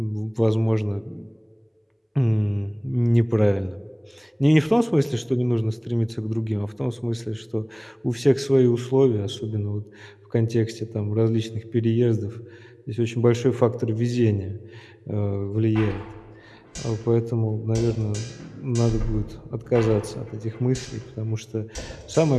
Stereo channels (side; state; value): both; identical; correlation 1.00